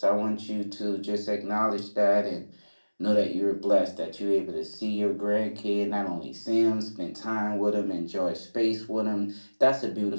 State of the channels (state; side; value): inverted; both; correlation -1.00